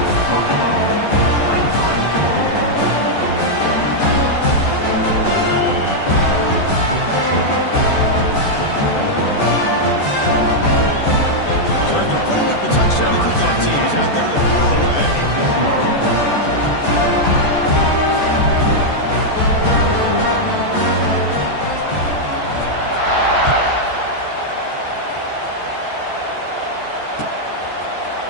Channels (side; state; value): right; late; 14 ms